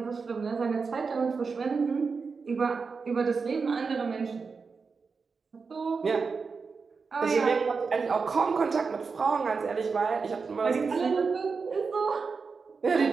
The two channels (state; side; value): quieter; left; 4.9 dB